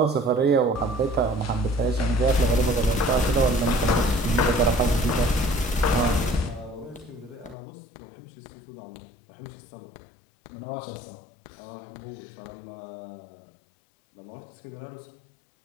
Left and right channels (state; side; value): drops out; right; at 7.6 s